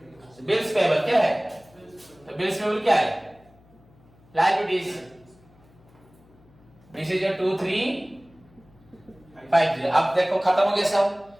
बिल्स पेबल क्या है, तो बिल्स पेबल क्या है, लायबिलिटीज, दिस इज योर 2350। अब देखो खत्म हो गया सब,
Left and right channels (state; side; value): noise; left; hum, 28 dB below the sound